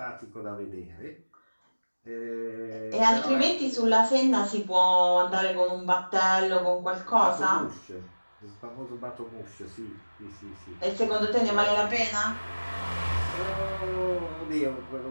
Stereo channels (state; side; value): inverted; both; correlation -1.00